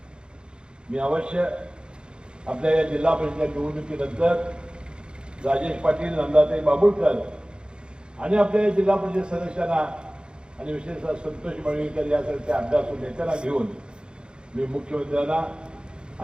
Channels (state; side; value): late; left; 0.050 ms